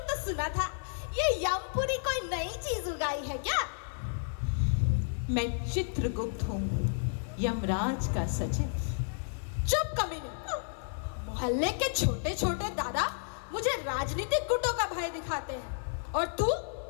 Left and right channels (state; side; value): silent; right; 57 dB below the other